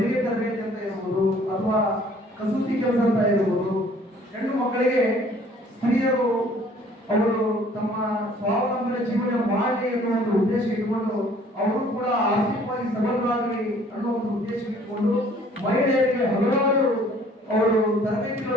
ತರಬೇತಿ ಅಂತ ಇರಬಹುದು ಅಥವಾ ಕಸೂತಿ ಕೆಲಸ ಅಂತ ಇರಬಹುದು. ಹೆಣ್ಣು ಮಕ್ಕಳಿಗೆ ಸ್ತ್ರೀಯರು ಅವರು ತಮ್ಮ ಸ್ವಾವಲಂಬನೆ ಜೀವನ ಮಾಡಲಿ ಅನ್ನೋ ಒಂದು ಉದ್ದೇಶ ಇಟ್ಟುಕೊಂಡು ಅವರು ಕೂಡ ಆರ್ಥಿಕವಾಗಿ ಸಬಲರಾಗಲಿ ಅನ್ನೋ ಒಂದು ಉದ್ದೇಶ ಇಟ್ಟುಕೊಂಡು ಮಹಿಳೆಯರಿಗೆ ಹಲವಾರು ಅವರು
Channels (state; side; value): normal; both; correlation 0.56